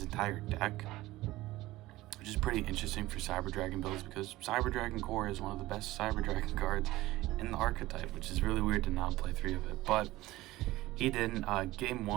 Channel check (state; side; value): quieter; left; 17.7 dB